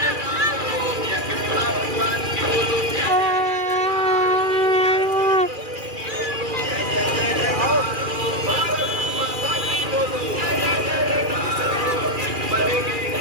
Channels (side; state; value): left; late; 2.4 ms